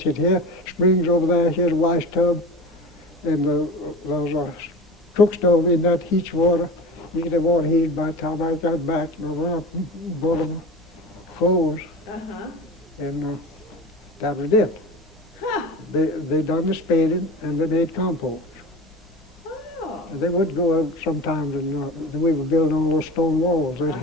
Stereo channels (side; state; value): both; normal; correlation 0.32